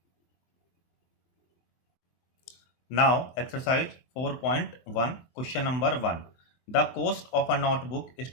Now exercise 4.1 question number 1। The cost of a notebook is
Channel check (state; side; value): late; right; 23 ms